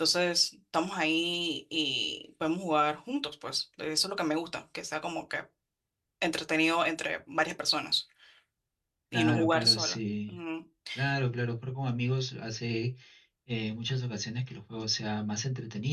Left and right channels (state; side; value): identical; both; correlation 1.00